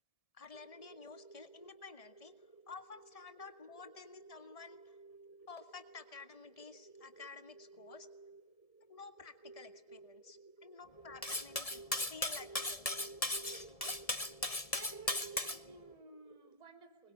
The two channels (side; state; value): right; late; 1.7 ms